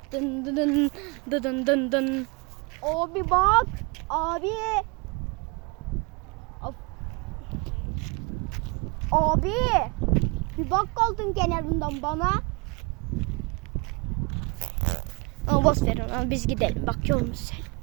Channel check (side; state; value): left; quieter; 28.5 dB